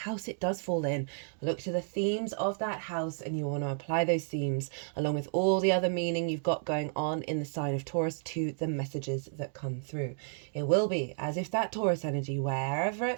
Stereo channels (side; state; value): left; silent; digital silence